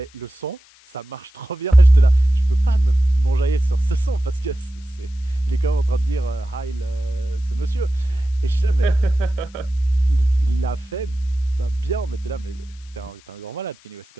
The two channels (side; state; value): left; noise; hiss, 28 dB below the sound